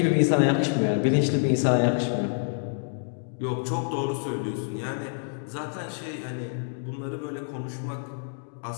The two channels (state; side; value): silent; right; digital silence